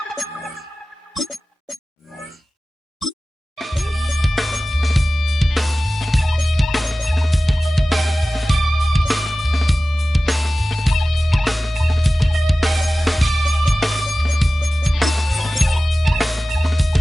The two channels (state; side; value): normal; both; correlation 0.96